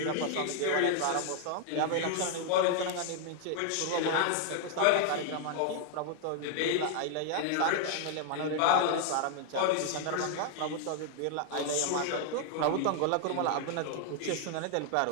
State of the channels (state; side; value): different; both; correlation 0.00